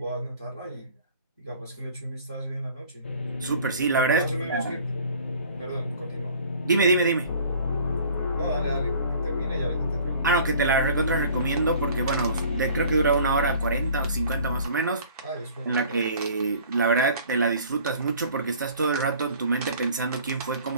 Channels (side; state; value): both; inverted; correlation -0.50